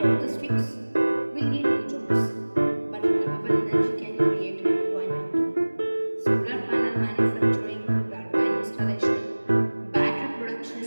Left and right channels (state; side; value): inverted; both; correlation -1.00